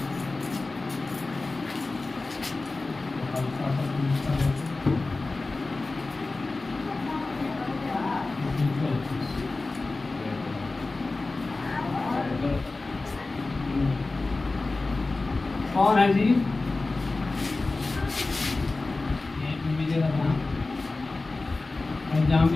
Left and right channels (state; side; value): quieter; right; 3.4 dB